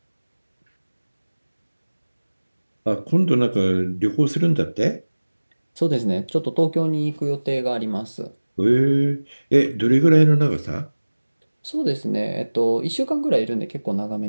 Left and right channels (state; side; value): inverted; both; correlation -1.00